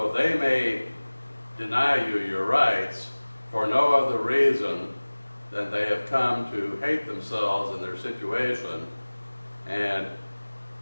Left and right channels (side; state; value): both; inverted; correlation -1.00